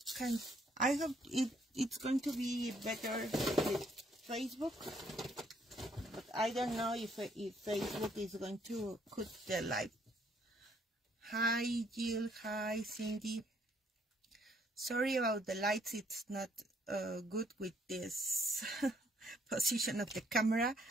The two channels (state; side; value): normal; both; correlation 0.67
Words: I hope it's going to be better with Facebook, but I don't know if Facebook is going to cut the live. Hi Jill, hi Cindy. Sorry about the lights, it's not good with this position of the camera,